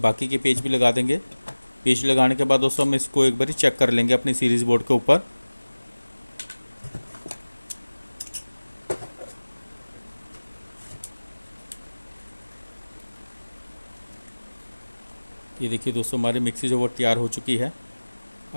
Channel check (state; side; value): inverted; both; correlation -1.00